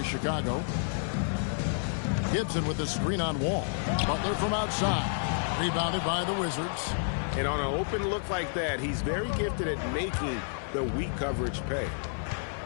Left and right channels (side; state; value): right; silent; digital silence